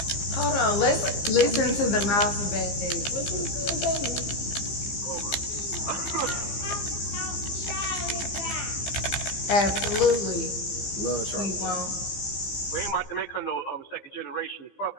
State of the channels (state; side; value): late; right; 15 ms